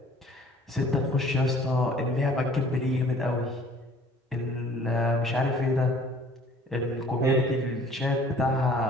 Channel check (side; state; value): both; normal; correlation 0.53